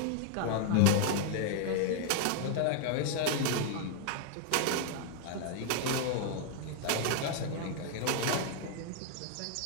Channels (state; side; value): different; both; correlation 0.00